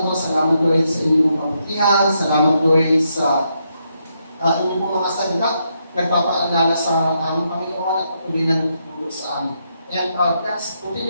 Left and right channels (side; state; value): both; inverted; correlation -0.80